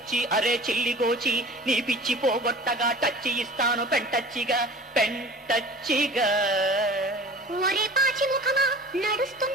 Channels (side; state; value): both; normal; correlation 0.42